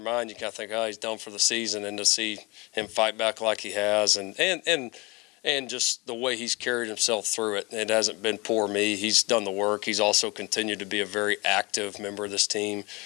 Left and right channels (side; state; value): right; quieter; 25.1 dB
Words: mind you kind of think, oh, he's done for the season, and to see him fight back like he has, and and just the way he's carried himself through it. It hasn't been poor me. He's done the work. He's also continued to be a very active member of this team.